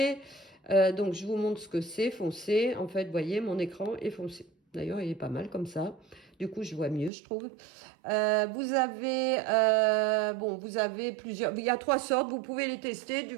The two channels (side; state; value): left; drops out; at 7.1 s